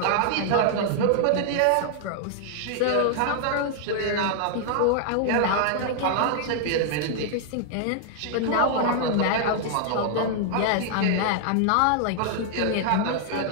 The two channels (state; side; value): different; both; correlation 0.00